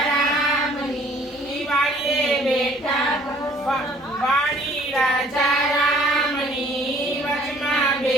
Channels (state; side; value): normal; both; correlation 0.56